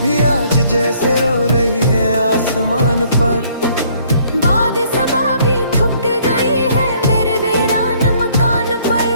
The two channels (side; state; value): both; inverted; correlation -0.63